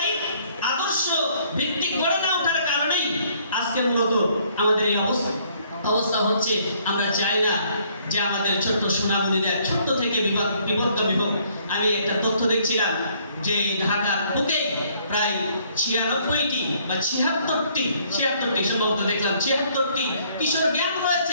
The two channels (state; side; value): inverted; both; correlation -0.64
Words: আদর্শ ভিত্তিক গড়ে না ওঠার কারণেই আজকে মূলত আমাদের এই অবস্থা হচ্ছে। আমরা চাই না যে আমাদের ছোট্ট সোনামণিদের ছোট্ট থেকে বিভক্ত। আমি একটা তথ্য দেখছিলাম যে ঢাকার বুকে প্রায় 96টি বা 76টি সম্ভবত দেখলাম 76টি কিশোর গ্যাং